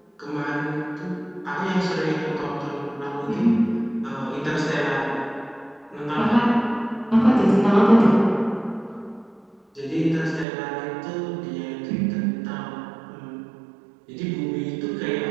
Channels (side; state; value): left; drops out; at 10.5 s